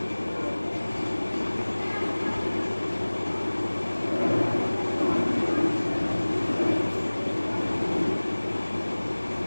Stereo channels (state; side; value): inverted; both; correlation -1.00